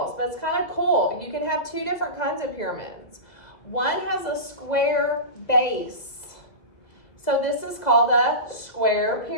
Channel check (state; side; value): late; right; 1.9 ms